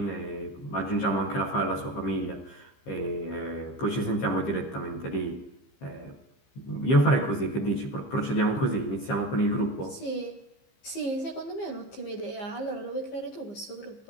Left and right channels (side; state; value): right; late; 15 ms